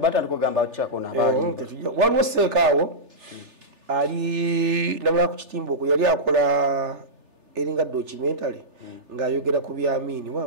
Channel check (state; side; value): late; left; 3.4 ms